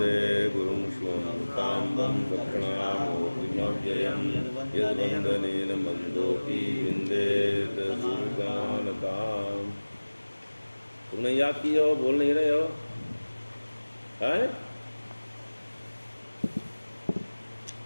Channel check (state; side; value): inverted; both; correlation -1.00